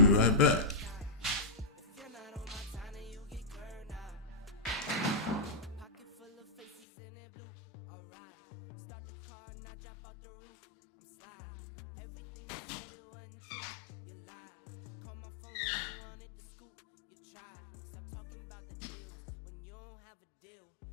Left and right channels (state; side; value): drops out; right; at 6.8 s